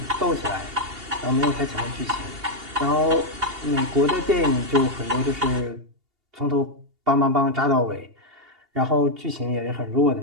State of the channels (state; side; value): late; left; 2.8 ms